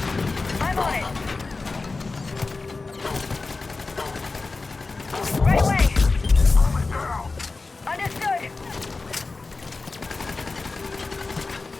I'm on it. Right away. Understood.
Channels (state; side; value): quieter; right; 3.8 dB